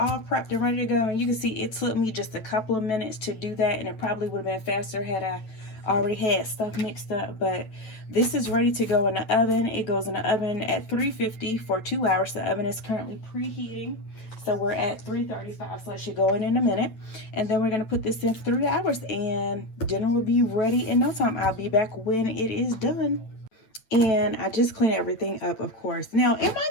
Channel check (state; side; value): late; right; 9.0 ms